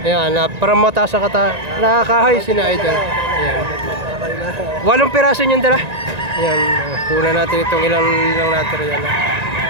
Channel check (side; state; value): left; late; 1.9 ms